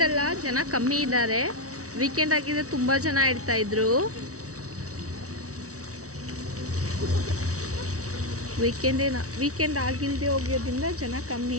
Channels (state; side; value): late; left; 0.65 ms